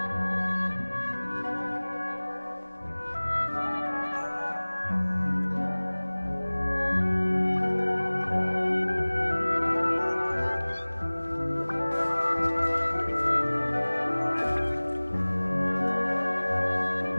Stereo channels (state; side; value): inverted; both; correlation -1.00